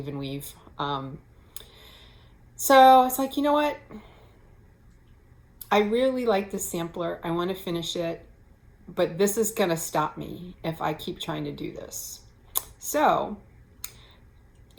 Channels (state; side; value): identical; both; correlation 1.00